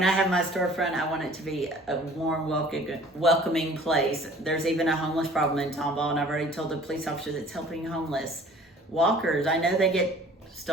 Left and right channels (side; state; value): both; normal; correlation 0.50